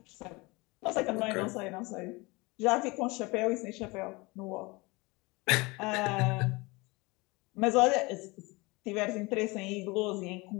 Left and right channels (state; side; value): quieter; right; 24.7 dB